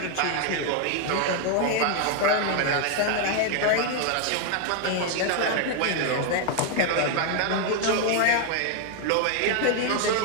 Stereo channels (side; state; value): both; different; correlation 0.00